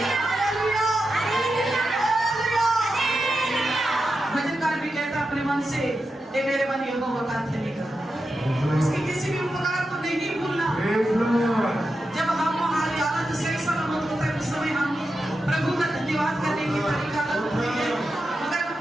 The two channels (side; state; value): both; normal; correlation 0.89